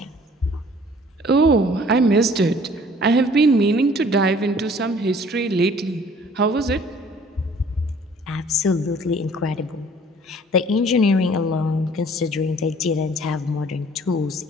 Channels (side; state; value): both; normal; correlation 0.54